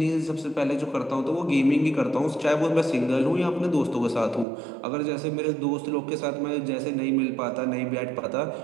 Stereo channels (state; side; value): drops out; left; at 4.5 s